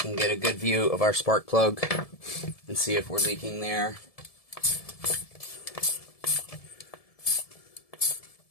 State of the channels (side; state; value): right; late; 1.7 ms